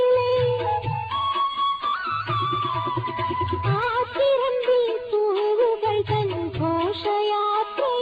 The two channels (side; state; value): both; identical; correlation 1.00